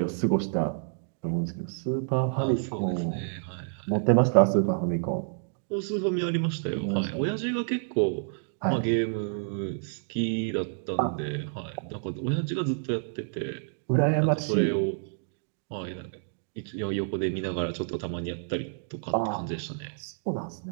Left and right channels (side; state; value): left; silent; digital silence